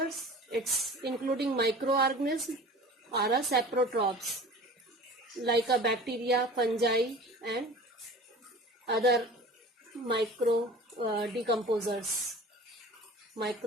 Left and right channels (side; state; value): both; normal; correlation 0.40